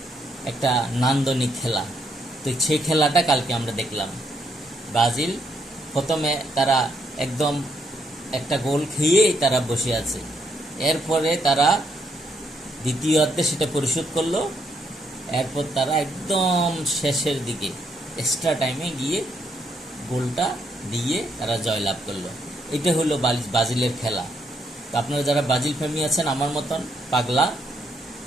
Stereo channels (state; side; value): normal; both; correlation 0.75